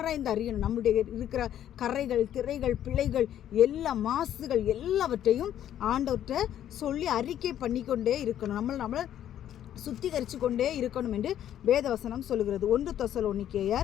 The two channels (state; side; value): quieter; right; 11.0 dB